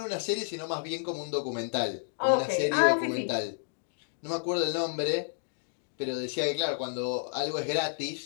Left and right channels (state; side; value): silent; right; digital silence